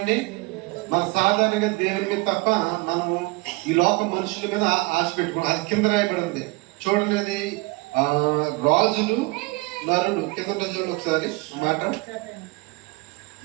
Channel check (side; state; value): left; quieter; 24.1 dB